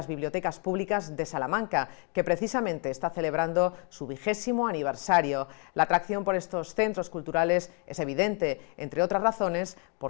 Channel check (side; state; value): right; quieter; 37.4 dB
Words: bibliotecas públicas de Salamanca, que precisamente está celebrando su 20º aniversario. La atracción por estos centros culturales es evidente, entre otras razones,